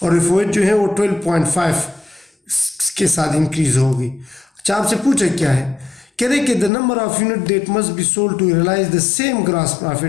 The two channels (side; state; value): right; drops out; at 6.7 s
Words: और एफओएच जो है वो 12.5 के साथ इंक्रीज होगी। अच्छा, आपसे पूछा क्या है? कह रहे कि the number of unit that must be sold to realise the same gross